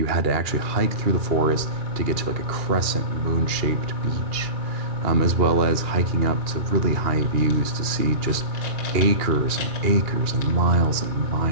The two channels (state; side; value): late; left; 2.8 ms